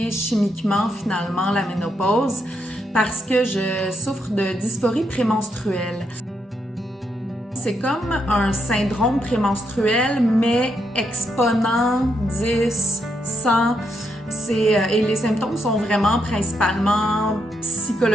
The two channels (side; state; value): both; normal; correlation 0.79